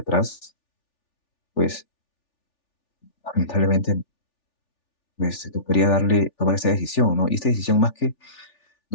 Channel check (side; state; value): right; late; 3.4 ms